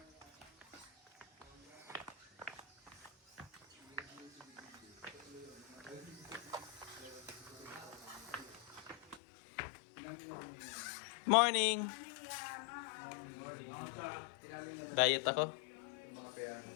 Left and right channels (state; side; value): drops out; right; at 9.2 s